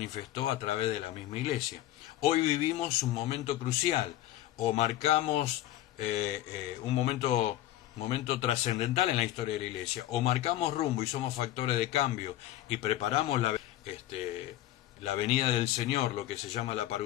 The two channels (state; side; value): quieter; right; 14.2 dB